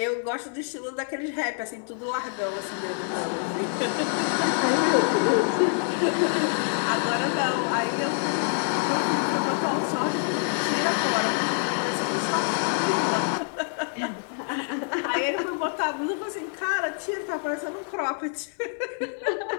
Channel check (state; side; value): silent; right; 61 dB below the other